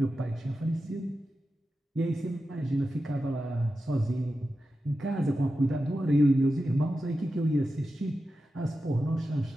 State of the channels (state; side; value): normal; both; correlation 0.91